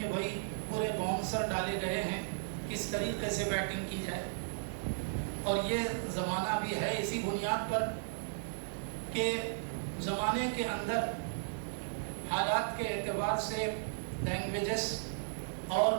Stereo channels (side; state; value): left; silent; digital silence